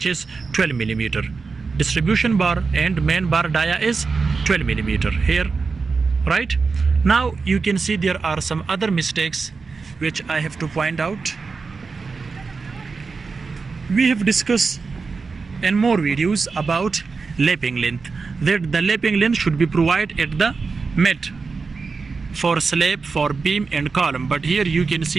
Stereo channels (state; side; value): quieter; left; 4.6 dB